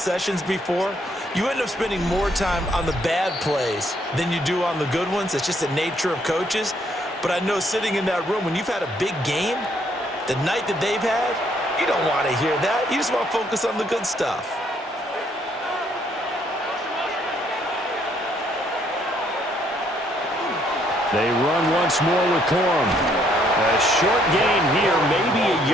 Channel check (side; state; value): both; normal; correlation 0.69